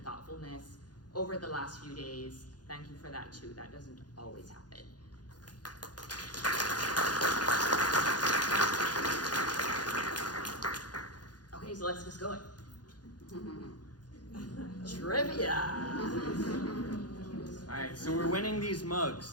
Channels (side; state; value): right; late; 0.69 ms